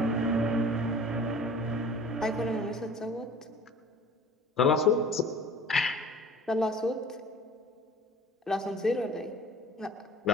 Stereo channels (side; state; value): both; normal; correlation 0.45